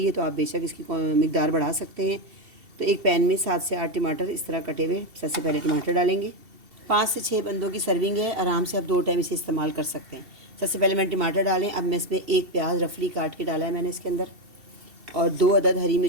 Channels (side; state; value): left; late; 2.7 ms